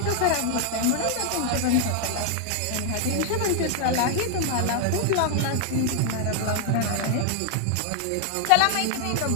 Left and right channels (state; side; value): different; both; correlation 0.00